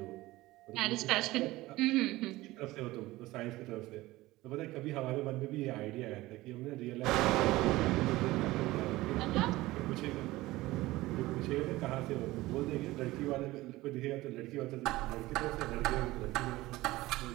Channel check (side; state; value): left; quieter; 18.5 dB